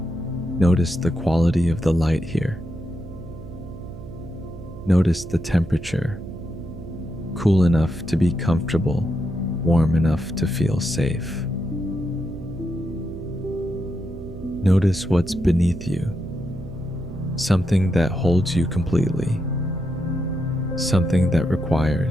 notice the quality of the light here. Notice the temperature, cool enough to be comfortable, warm enough to feel safe. Notice what's beneath you, something that holds you completely, something that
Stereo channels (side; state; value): right; noise; hum, 13 dB below the sound